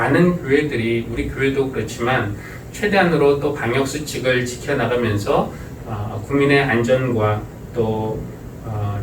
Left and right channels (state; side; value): identical; both; correlation 1.00